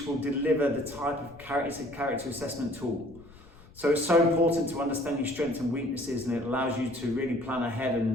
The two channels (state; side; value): noise; left; rumble, 22 dB below the sound